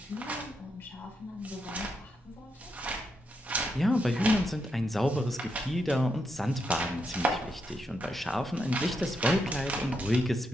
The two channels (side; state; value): both; normal; correlation 0.82